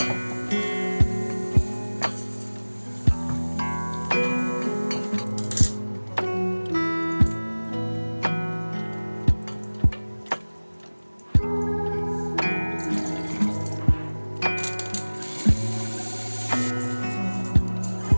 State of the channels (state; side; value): inverted; both; correlation -1.00